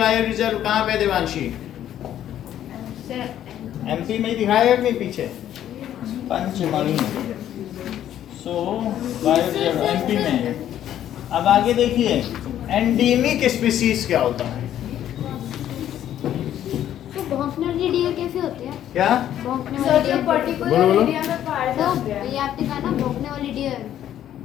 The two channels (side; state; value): right; quieter; 11.3 dB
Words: रिजर्व कहाँ पे देवांशी? एमपी में ही दिखाया कि पीछे पंचमढ़ी, सो बायो रिजर्व एमपी में है। अब आगे देखिए, एंडेमिक स्पीसीज क्या होता है? तो भौंकने वाली डियर कैसे होती है? क्या? भौंकने सर वाली जो डियर। पर्टिकुलर बोलो, बोलो। एरिया में पाया तो जाता है। ये आपने कहा ना भौंकने वाली डियर।